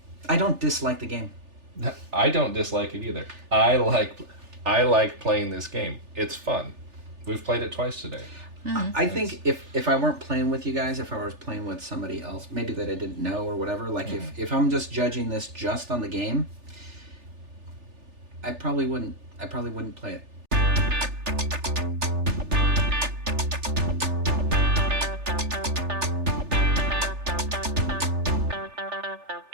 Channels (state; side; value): late; left; 3.4 ms